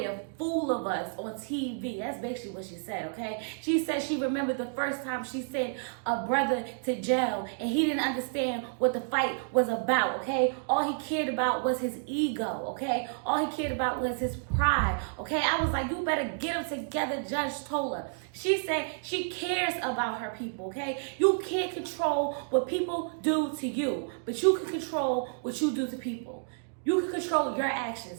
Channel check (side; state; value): left; silent; digital silence